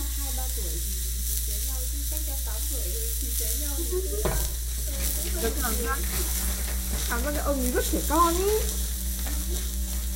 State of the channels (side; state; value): both; identical; correlation 1.00